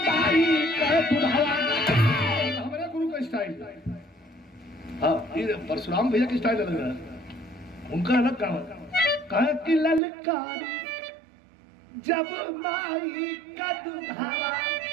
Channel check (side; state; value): left; drops out; at 10.0 s